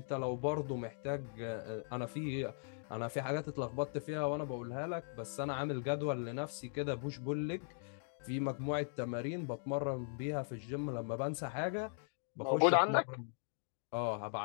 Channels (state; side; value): silent; right; digital silence